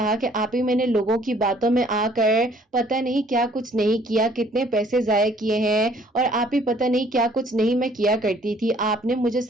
कि आप ही मैंने लोगों की बातों में आकर पता नहीं क्या कुछ नहीं किया, कितने पैसे जाया किए हैं और आप ही पता नहीं क्या कुछ नहीं मैं किया करती थी। आपने मुझे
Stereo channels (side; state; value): both; normal; correlation 0.59